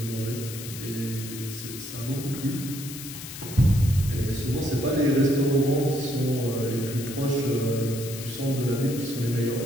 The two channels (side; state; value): left; noise; hiss, 11 dB below the sound